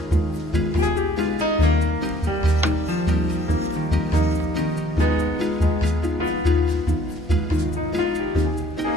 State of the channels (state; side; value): normal; both; correlation 0.58